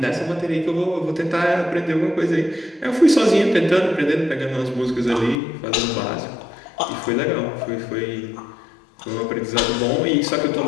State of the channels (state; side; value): drops out; right; at 5.4 s